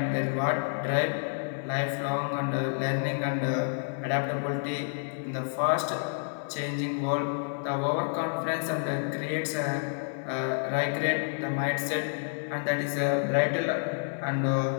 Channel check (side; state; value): right; silent; digital silence